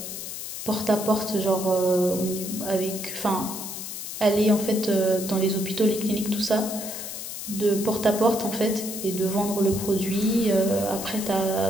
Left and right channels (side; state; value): left; noise; hiss, 8 dB below the sound